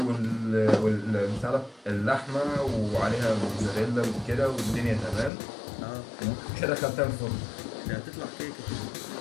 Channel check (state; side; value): drops out; right; at 5.3 s